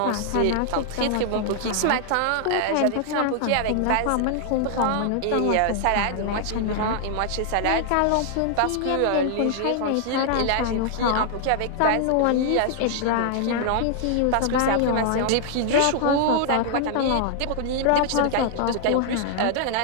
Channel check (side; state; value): both; different; correlation -0.01